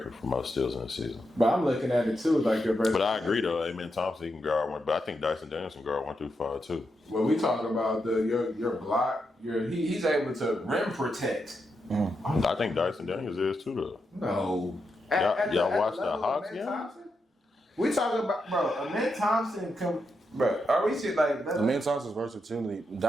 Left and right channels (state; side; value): normal; both; correlation 0.84